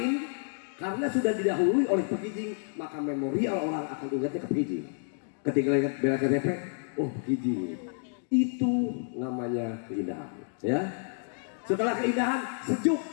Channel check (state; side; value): silent; right; digital silence